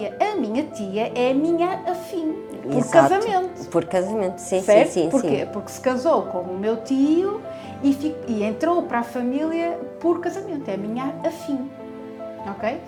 A minha tia é a minha afim, por casamento. Por casamento, sim, certo? sim. Porquê? Porque se casou com o meu tio e entrou para a família por casamento. É a minha afim, ok?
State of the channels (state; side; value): identical; both; correlation 1.00